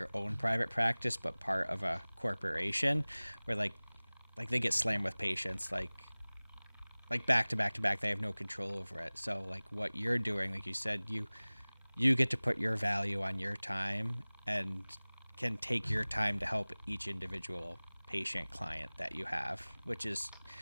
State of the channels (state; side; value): inverted; both; correlation -1.00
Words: own private practice but part of a corporation where like they get slammed with patients like back to back to back. They have no control over it. So like what you're doing, like you said, you get to put your value on your time and can take your time to help each individual patient client that you have, which is